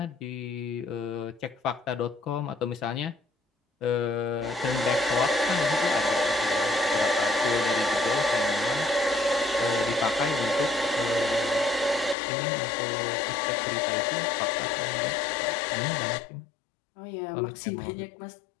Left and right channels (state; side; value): drops out; right; at 12.2 s